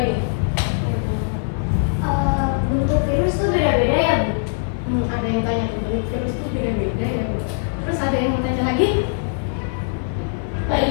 Bentuk virus tuh beda-beda ya, Bu? Ada yang tanya bentuk virus itu beda-beda ya Bu. Terus ada yang mau tanya lagi?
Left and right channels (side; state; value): right; silent; digital silence